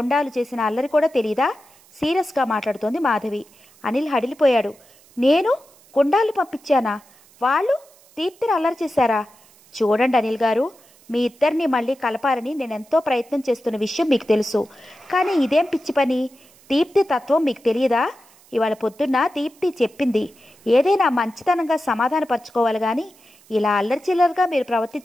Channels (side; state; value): right; noise; hiss, 28 dB below the sound